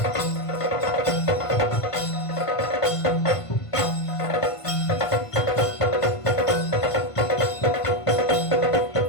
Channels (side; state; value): right; late; 1.5 ms